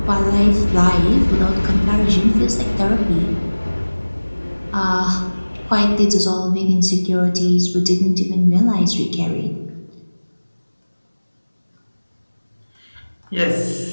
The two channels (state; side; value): inverted; both; correlation -1.00